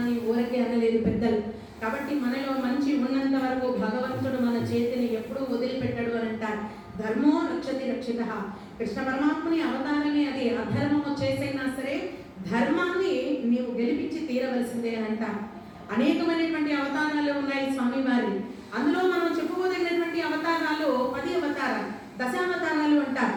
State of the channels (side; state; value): both; identical; correlation 1.00